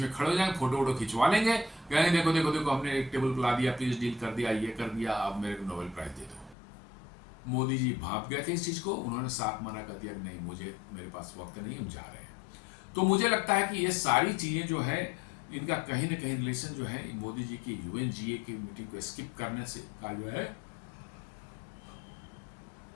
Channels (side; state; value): right; drops out; at 6.6 s